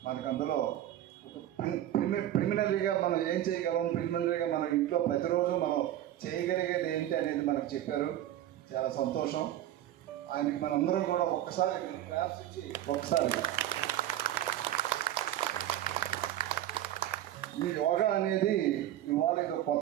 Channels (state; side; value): quieter; left; 12.7 dB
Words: మనకు అందులో ప్రిలిమినరీగా మనం ఏం చేయగలం, ప్రిలిమినరీగా మన ఇంట్లో ప్రతిరోజు మనం చేయగలిగేది ఏంటి అనేది మనకు చెప్పారు. చాలా సంతోషం. ఆయనకి మనందరం కూడా ఒక్కసారి క్లాప్స్ ఇచ్చి ఒకసారి ఈ యోగా అనేది ఇవాళ ఇది